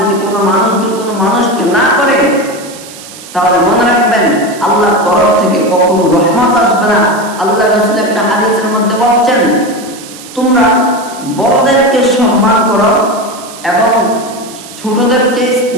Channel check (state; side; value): noise; right; hiss, 17 dB below the sound